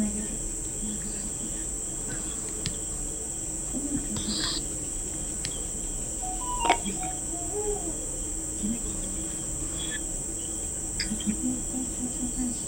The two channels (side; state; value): both; identical; correlation 1.00